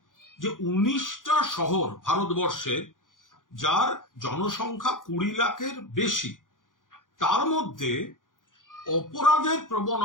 যে 19টা শহর ভারতবর্ষে, যার জনসংখ্যা 20 লাখের বেশি, তার মধ্যে অপরাধের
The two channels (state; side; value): late; right; 0.89 ms